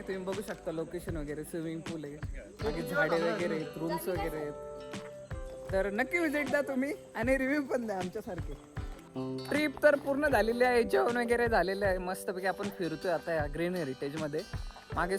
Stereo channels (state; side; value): identical; both; correlation 1.00